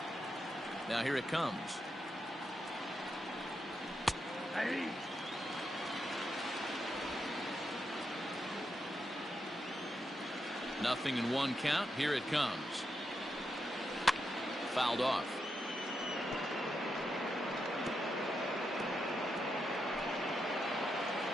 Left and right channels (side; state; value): both; normal; correlation 0.84